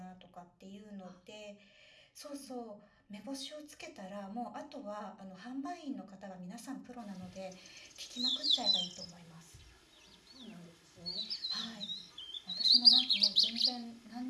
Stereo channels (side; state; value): both; identical; correlation 1.00